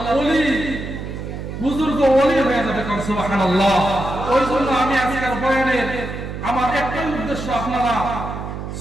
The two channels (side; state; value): right; noise; hum, 7 dB below the sound